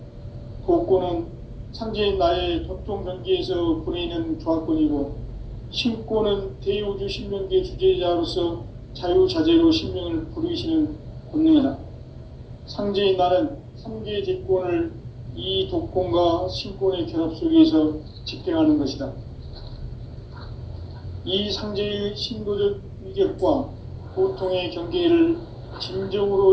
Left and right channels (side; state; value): both; identical; correlation 1.00